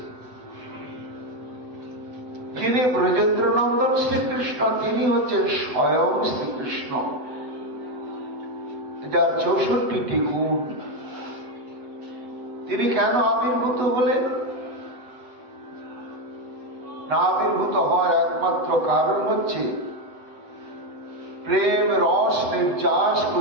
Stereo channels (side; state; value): left; late; 8.1 ms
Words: যিনি ব্রজেন্দ্র নন্দন শ্রীকৃষ্ণ, তিনি হচ্ছেন স্বয়ং শ্রীকৃষ্ণ, যার 64টি গুণ। তিনি কেন আবির্ভূত হলেন? না, আবির্ভূত হওয়ার একমাত্র কারণ হচ্ছে প্রেম রস নির্যাস